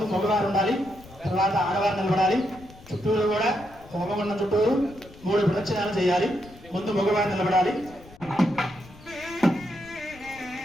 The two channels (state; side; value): noise; left; rumble, 21 dB below the sound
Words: మగవారు ఉండాలి, తర్వాత ఆడవారు నిలబడాలి. చుట్టూరు కూడా హోమగుండం చుట్టూరు 3 ప్రదక్షిణాలు చేయాలి. ముందు మగవారు నిలబడాలి.